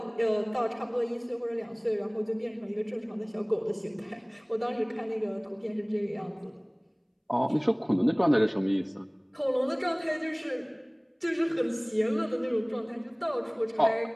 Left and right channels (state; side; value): identical; both; correlation 1.00